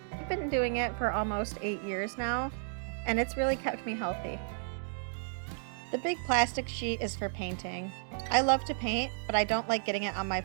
I've been doing it for almost 8 years now, and it's really kept me healthy. The big plastic sheet is for painting. I love to paint, but I don't like getting it on my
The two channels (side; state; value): left; silent; digital silence